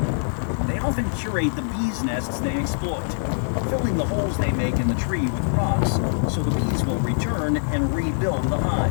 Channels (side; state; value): right; silent; 63 dB below the other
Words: They often curate the bees' nests they exploit, filling the holes they make in the tree with rocks so the bees will return and rebuild the